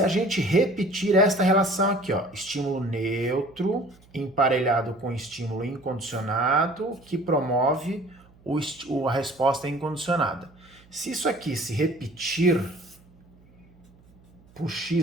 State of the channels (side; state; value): right; noise; hum, 28 dB below the sound